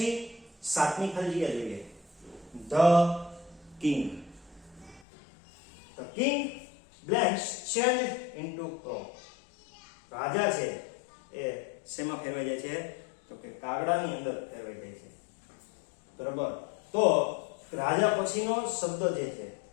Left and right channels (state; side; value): drops out; right; at 5.1 s